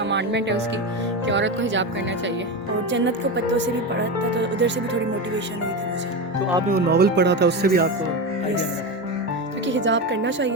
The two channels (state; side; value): normal; both; correlation 0.19